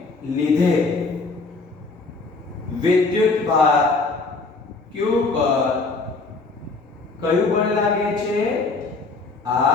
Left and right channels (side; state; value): right; quieter; 3.8 dB